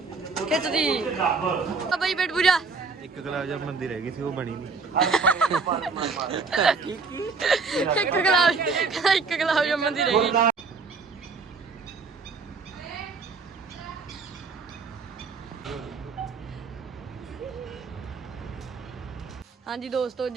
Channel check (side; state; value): left; quieter; 4.6 dB